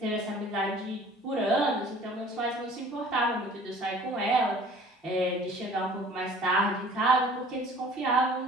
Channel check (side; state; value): both; normal; correlation 0.49